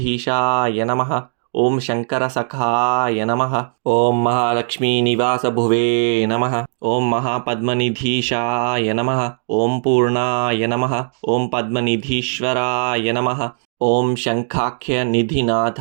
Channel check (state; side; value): silent; left; digital silence